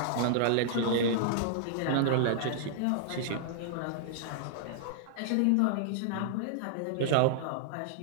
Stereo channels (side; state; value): both; different; correlation -0.01